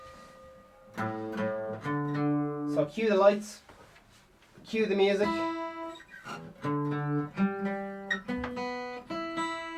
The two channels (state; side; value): identical; both; correlation 1.00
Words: So cue the lights, cue the music.